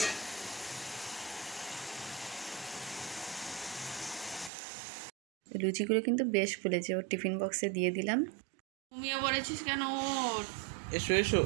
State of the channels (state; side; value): drops out; left; at 4.5 s